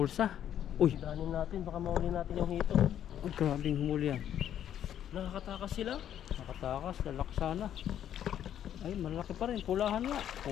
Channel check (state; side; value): quieter; right; 10.3 dB